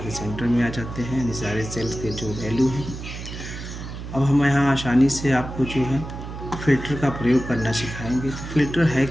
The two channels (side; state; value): right; noise; hum, 9 dB below the sound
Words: सेंटर में आ जाते हैं, यानी सारे सेल्स के जो वैल्यू है। अब हम यहाँ आसानी से आपको जो है फ़िल्टर का प्रयोग करना सिखाएंगे। तो फ़िल्टर है